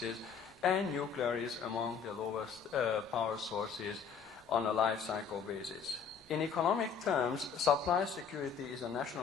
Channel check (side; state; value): right; quieter; 6.6 dB